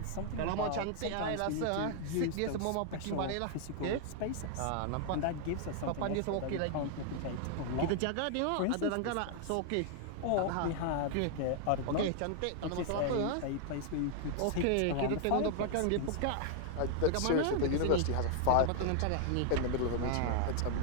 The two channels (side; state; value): both; different; correlation 0.00